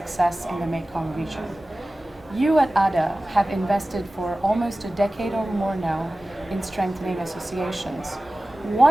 in the Mekong region. You at ADA have invested for almost a decade or more now in strengthening associations.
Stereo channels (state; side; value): normal; both; correlation 0.97